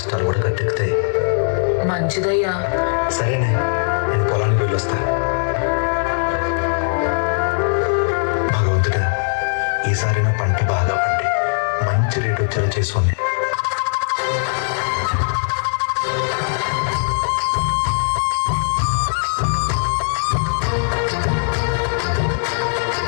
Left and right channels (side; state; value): right; silent; 66 dB below the other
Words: కూడా గట్టెక్కుతాయి. మంచిదయ్యా. సరేనే, నేను పొలానికి వెళ్ళొస్తా. భగవంతుడా, ఈసారి నా పంట బాగా పండి మంచి రేట్ వచ్చేలా చేసుకోండి.